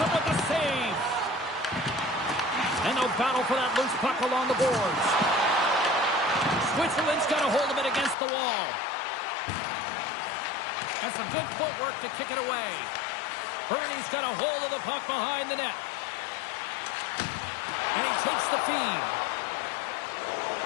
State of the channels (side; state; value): right; drops out; at 8.2 s